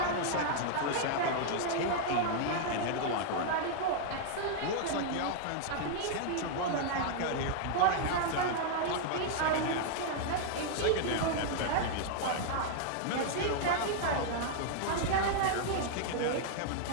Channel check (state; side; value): different; both; correlation -0.01